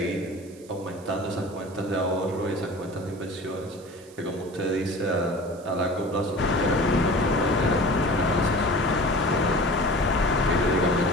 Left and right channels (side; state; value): right; noise; hiss, 24 dB below the sound